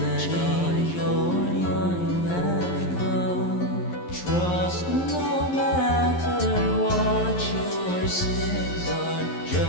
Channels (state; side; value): late; right; 11 ms